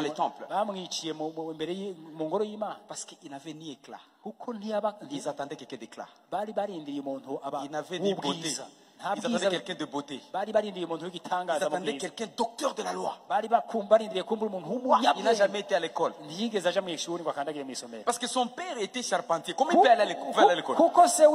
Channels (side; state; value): both; identical; correlation 1.00